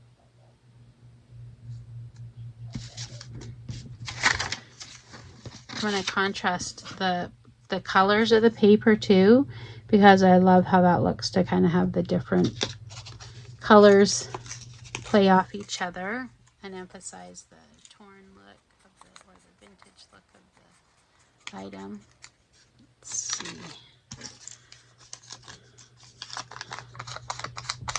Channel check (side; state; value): both; identical; correlation 1.00